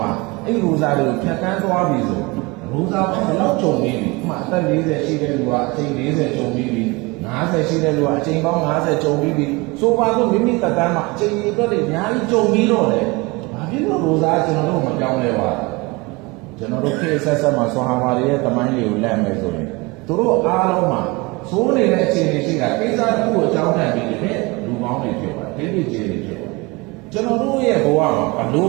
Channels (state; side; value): quieter; left; 25.2 dB